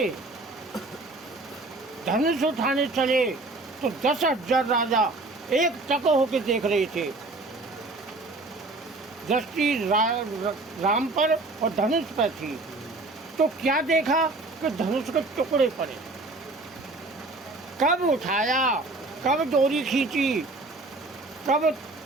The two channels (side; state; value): left; quieter; 3.1 dB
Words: धनुष उठाने चले तो 10,000 राजा एक टक होकर देख रहे थे। दृष्टि राम पर और धनुष पर थी। तो क्या देखा कि धनुष के टुकड़े पड़े। कब उठाया, कब डोरी खींची, कब